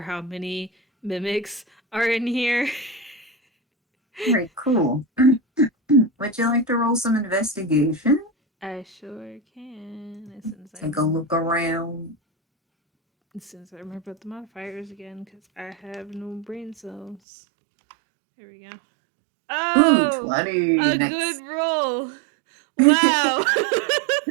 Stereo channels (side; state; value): left; drops out; at 17.2 s